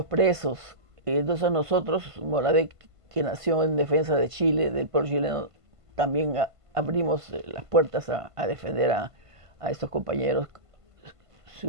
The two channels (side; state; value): left; late; 1.5 ms